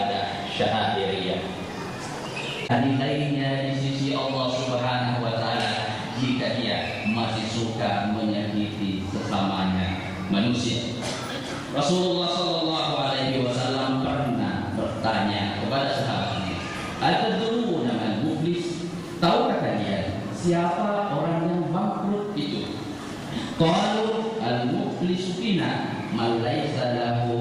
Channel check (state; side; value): identical; both; correlation 1.00